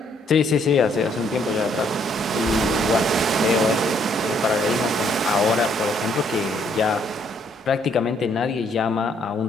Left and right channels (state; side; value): normal; both; correlation 0.68